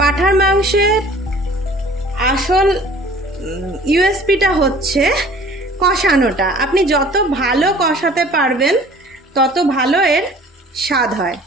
মাংসের আসল ইউএসপিটা হচ্ছে কষানোটা। আপনি যত ভালো কষাতে পারবেন তত ভালো এর স্বাদ হয়,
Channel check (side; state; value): both; normal; correlation 0.50